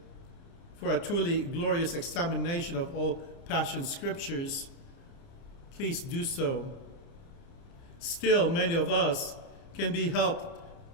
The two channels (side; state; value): right; late; 30 ms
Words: for a truly glorious examination of all Passion Scriptures, please do so. Still, many of us can be helped